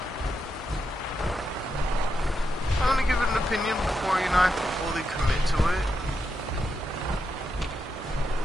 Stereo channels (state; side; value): normal; both; correlation 0.84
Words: I want to give it an opinion before, you know, I fully commit to it.